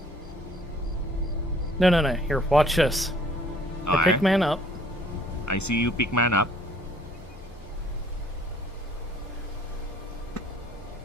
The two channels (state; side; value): normal; both; correlation 0.58